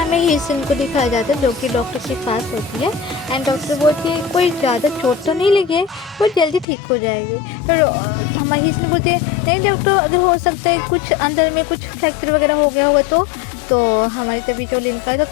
ही सीन को दिखाया जाता है जो कि डॉक्टर के पास होती है एंड डॉक्टर बोलती है कोई ज़्यादा चोट तो नहीं लगी है, वो जल्दी ठीक हो जाएगी। तो हमारी सीन बोलती है नहीं डॉक्टर, अगर हो सकता है कुछ अंदर में कुछ फ्रैक्चर वगैरह हो गया होगा तो हमारी तभी जो लिनका तो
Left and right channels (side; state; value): right; drops out; at 6.7 s